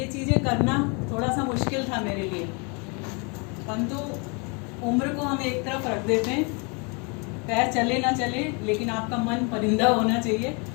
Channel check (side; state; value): right; quieter; 32.7 dB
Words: चीज़ें करना थोड़ा सा मुश्किल था मेरे लिए, परंतु उम्र को हम एक तरफ रख देते हैं, पैर चले ना चले लेकिन आपका मन परिंदा होना चाहिए,